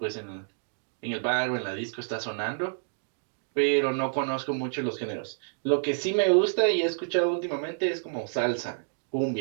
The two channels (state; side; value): silent; left; digital silence